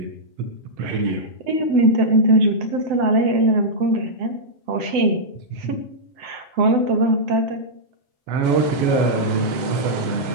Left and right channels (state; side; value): late; left; 7.9 ms